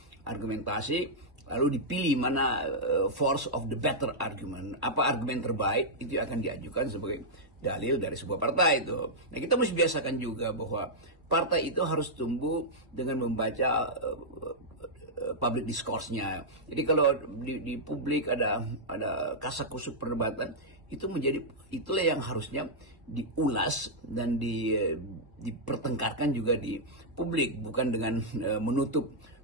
argumentasi lalu dipilih mana force of the better argument, apa argumen terbaik itu akan diajukan sebagai dalil dari sebuah partai itu. Nah, kita mesti biasakan juga bahwa partai itu harus tumbuh dengan membaca public discourse-nya. Jadi kalau di publik ada kasak-kusuk perdebatan, itulah yang harusnya diulas dan dipertengkarkan juga di publik, bukan dengan menutup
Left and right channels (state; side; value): late; left; 1.4 ms